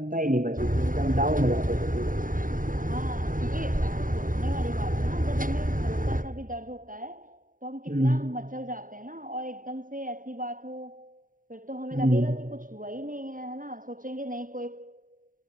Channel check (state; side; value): late; left; 0.39 ms